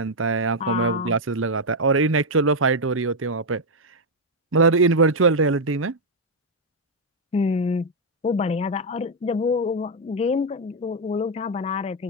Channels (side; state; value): both; normal; correlation 0.00